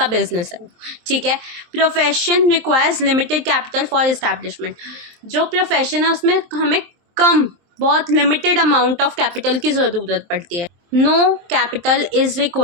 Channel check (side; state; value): left; late; 23 ms